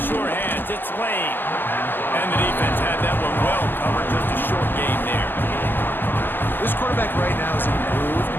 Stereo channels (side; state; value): right; late; 0.098 ms